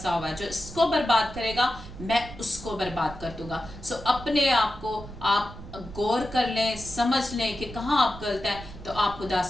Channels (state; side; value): noise; right; rumble, 14 dB below the sound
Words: हुआ है, जो इसको बर्बाद करेगा मैं उसको बर्बाद कर दूंगा। सो अपने आप को आप गौर कर लें, समझ लें कि कहाँ आप गलत हैं, तो आप खुदा